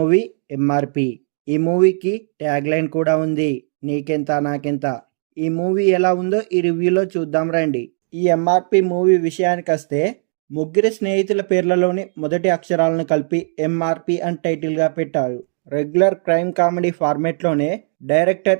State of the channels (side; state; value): left; silent; 67 dB below the other